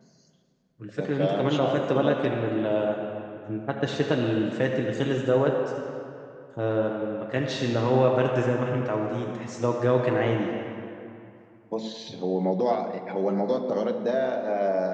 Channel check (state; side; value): identical; both; correlation 1.00